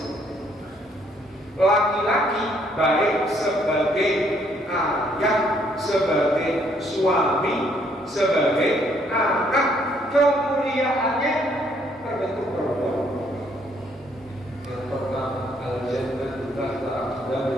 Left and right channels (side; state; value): both; normal; correlation 0.67